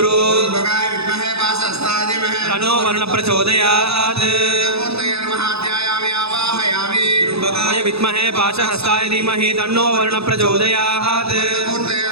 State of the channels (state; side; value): late; left; 0.79 ms